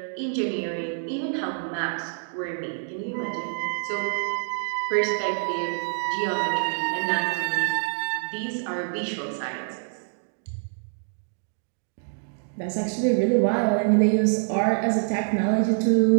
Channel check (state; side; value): silent; left; 61 dB below the other